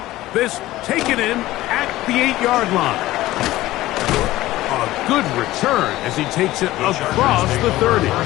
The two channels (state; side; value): quieter; right; 16.5 dB